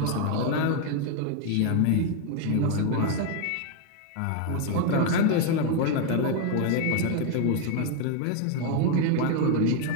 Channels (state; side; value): different; both; correlation 0.01